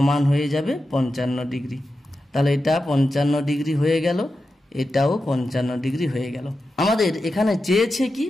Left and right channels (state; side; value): normal; both; correlation 0.90